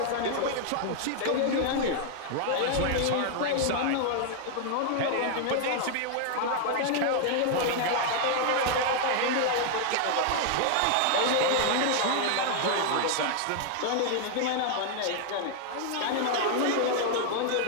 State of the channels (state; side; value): different; both; correlation 0.00